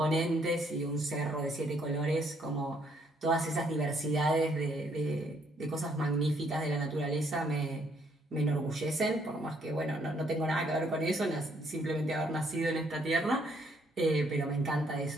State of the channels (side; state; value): both; normal; correlation 0.69